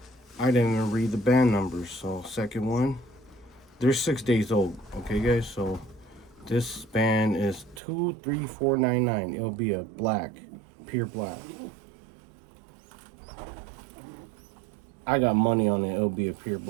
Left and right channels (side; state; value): left; drops out; at 7.8 s